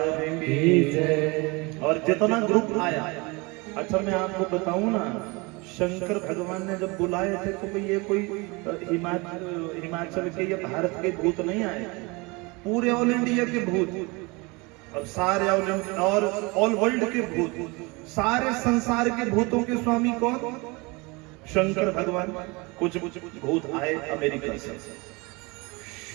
की जय। और जितना ग्रुप आया, अच्छा मैं आपको बताऊं ना, शंकर भगवान ने जब बुलाए थे तो ये कोई हिमाचल के या भारत के भूत नहीं आए, पूरे ऑल इंडिया के भूत, और सारे और ऑल वर्ल्ड के भूत, सारे संसार के भूतों के स्वामी कौन? शंकर भगवान कुछ भूत आए अमेरिका से,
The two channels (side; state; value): left; quieter; 26.5 dB